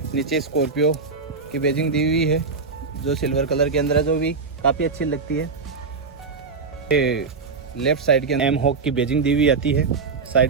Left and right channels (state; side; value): quieter; left; 4.6 dB